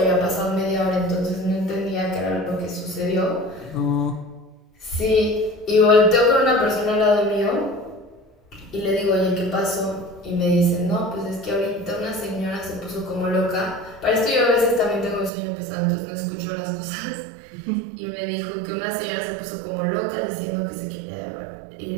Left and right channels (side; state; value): left; drops out; at 15.3 s